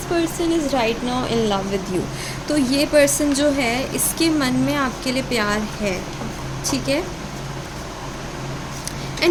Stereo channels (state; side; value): identical; both; correlation 1.00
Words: person is right now in love with you. तो ये पर्सन जो है इसके मन में आपके लिए प्यार है, ठीक है।